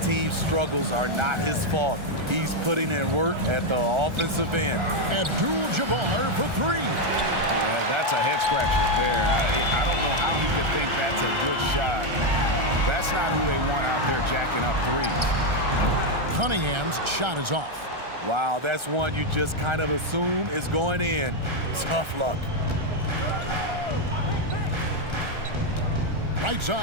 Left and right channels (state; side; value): late; left; 1.4 ms